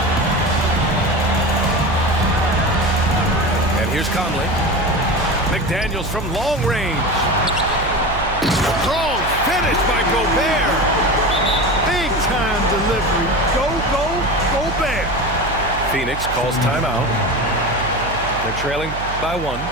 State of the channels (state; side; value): noise; right; hum, 9 dB below the sound